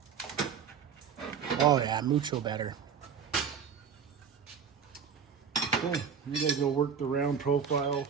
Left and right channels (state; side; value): quieter; left; 7.0 dB